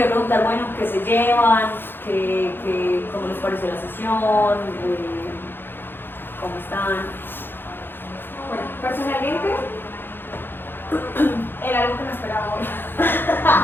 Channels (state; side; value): late; right; 0.10 ms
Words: preguntar, bueno, ¿qué se llevan? ¿Cómo les pareció la sesión? ¿Cómo están? Bueno, personalmente era algo que no esperaba hoy.